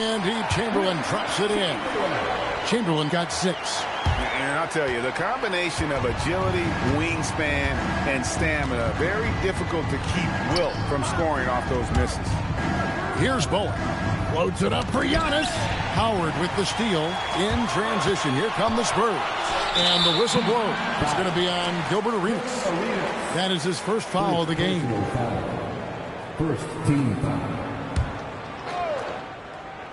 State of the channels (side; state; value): both; identical; correlation 1.00